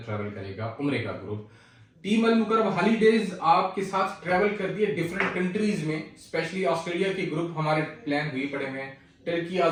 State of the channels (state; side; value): identical; both; correlation 1.00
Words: ٹریول کرے گا. عمرے کا گروپ ٹیم المکرم ہالی ڈیز آپ کے ساتھ ٹریول کر دیے ڈیفرنٹ کنٹریز میں. اسپیشلی آسٹریلیا کے گروپ ہمارے پلان ہوئے پڑے ہوئے ہیں. Turkey,